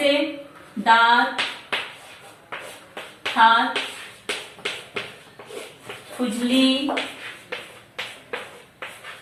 दांत, हाथ, खुजली,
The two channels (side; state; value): both; identical; correlation 1.00